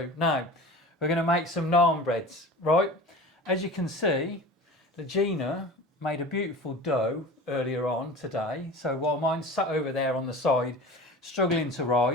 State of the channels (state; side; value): normal; both; correlation 0.36